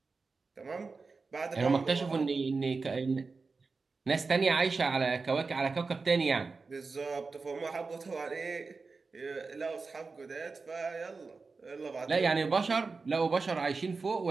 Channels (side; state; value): left; quieter; 4.3 dB